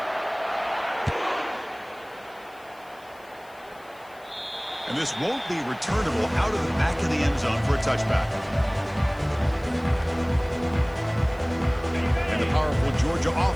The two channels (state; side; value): noise; left; hiss, 28 dB below the sound